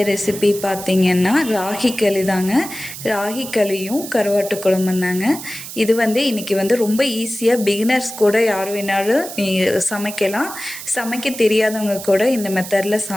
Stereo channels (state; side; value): noise; right; hiss, 11 dB below the sound